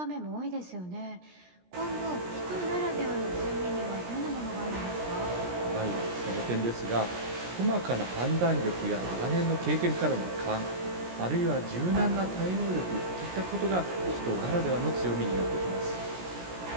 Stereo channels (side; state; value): left; late; 17 ms